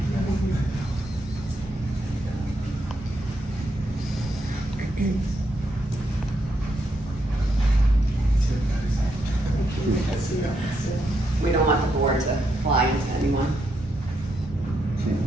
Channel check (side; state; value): both; normal; correlation 0.79